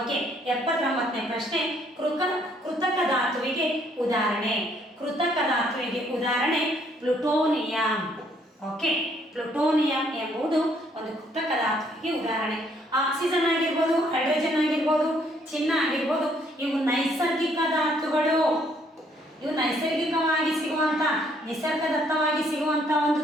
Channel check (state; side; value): normal; both; correlation 0.67